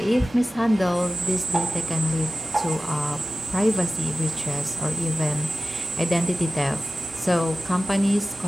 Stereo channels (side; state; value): both; normal; correlation 0.95